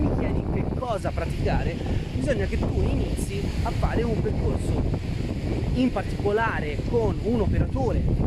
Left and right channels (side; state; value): both; identical; correlation 1.00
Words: chiedi che cosa praticare, bisogna che tu inizi a fare un percorso in particolare con un operatore,